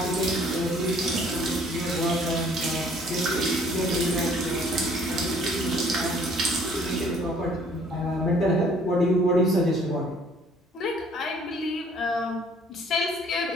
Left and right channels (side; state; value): both; normal; correlation 0.58